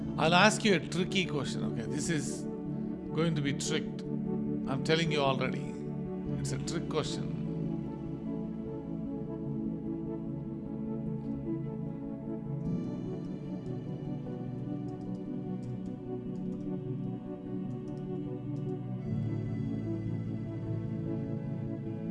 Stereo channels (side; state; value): both; identical; correlation 1.00